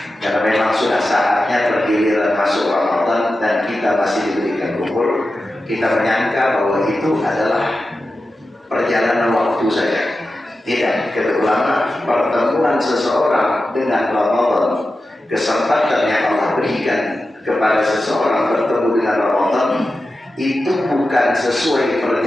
Karena memang sudah saatnya bergiliran masuk Ramadan dan kita masih diberikan berkumpul, kita menyangka bahwa itu adalah perjalanan waktu saja. Tidak, kata ulama, pertemuan seseorang dengan Ramadan, kesempatan yang Allah berikan kepada seseorang bertemu dengan Ramadan, itu bukan sesuai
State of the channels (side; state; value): both; normal; correlation 0.92